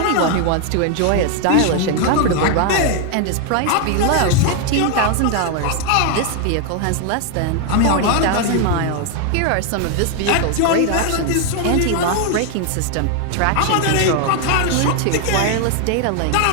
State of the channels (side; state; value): both; different; correlation 0.01